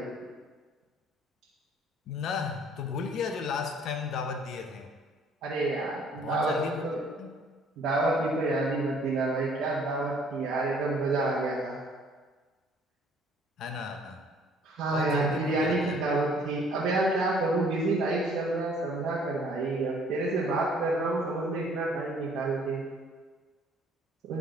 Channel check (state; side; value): normal; both; correlation 0.58